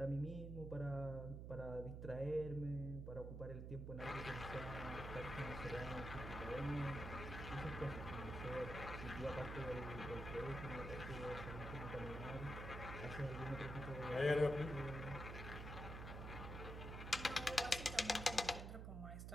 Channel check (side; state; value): right; noise; hum, 6 dB below the sound